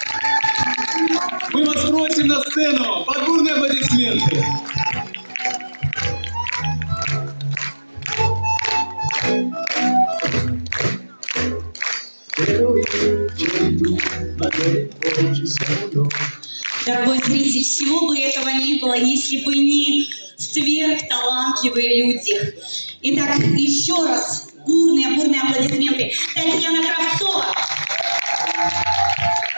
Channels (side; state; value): both; inverted; correlation -1.00